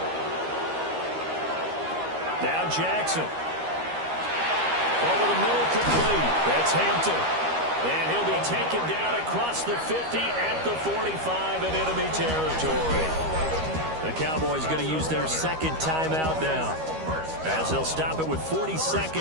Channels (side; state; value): left; late; 13 ms